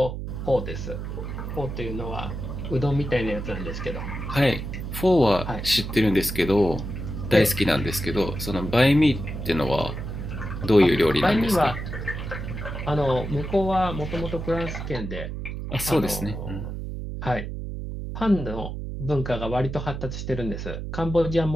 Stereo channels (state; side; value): noise; right; hum, 6 dB below the sound